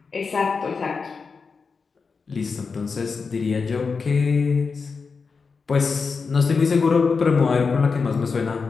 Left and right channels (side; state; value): right; quieter; 5.0 dB